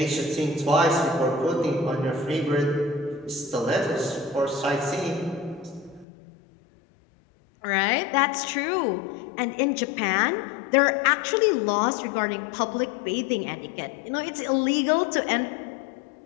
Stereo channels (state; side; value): drops out; right; at 6.1 s